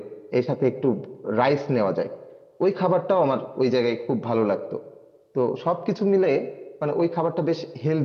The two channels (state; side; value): identical; both; correlation 1.00